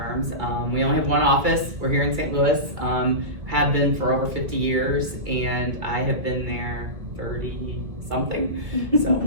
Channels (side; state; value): left; late; 2.4 ms